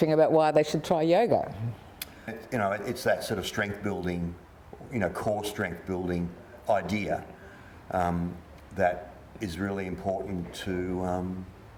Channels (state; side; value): identical; both; correlation 1.00